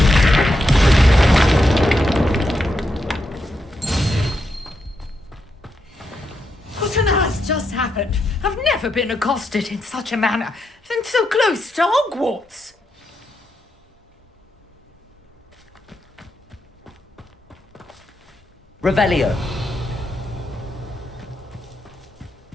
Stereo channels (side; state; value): both; normal; correlation 0.83